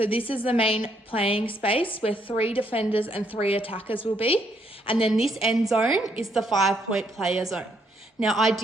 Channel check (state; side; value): normal; both; correlation 0.72